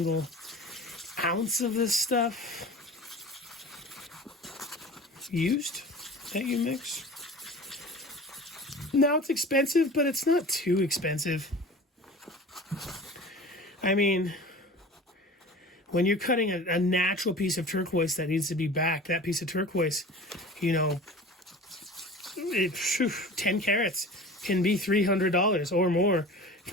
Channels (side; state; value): both; normal; correlation 0.38